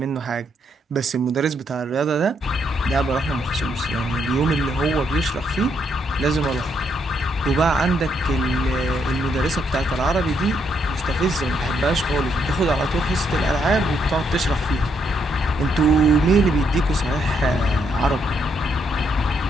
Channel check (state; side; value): normal; both; correlation 0.75